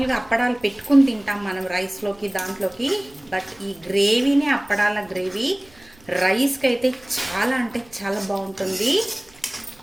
అప్పడాలు పెట్టుకుని తింటాం మనం రైస్లోకి దాంట్లోకి, బట్ ఈ గ్రేవీనే అప్పడాల గ్రేవీ రైస్కి అయితే చాలా అంటే చాలా బాగుంటుంది.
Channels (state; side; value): noise; right; rumble, 28 dB below the sound